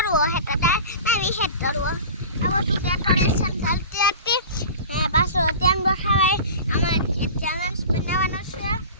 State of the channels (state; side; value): inverted; both; correlation -0.37